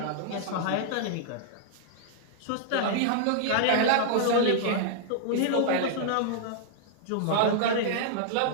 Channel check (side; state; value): both; different; correlation -0.01